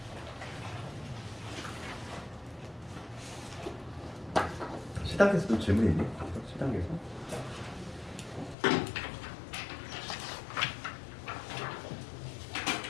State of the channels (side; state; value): right; drops out; at 8.6 s